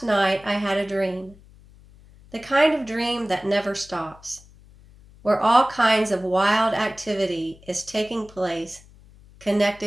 night I had a dream, the kind of dream that never stops, where all kinds of wild activity is taking place,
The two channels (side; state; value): left; noise; hum, 24 dB below the sound